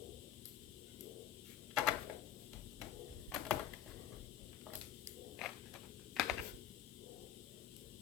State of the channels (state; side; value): quieter; right; 10.6 dB